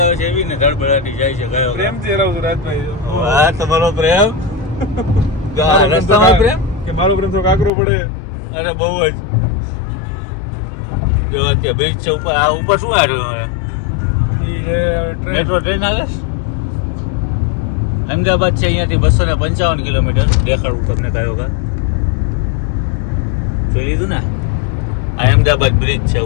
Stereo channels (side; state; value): right; drops out; at 7.7 s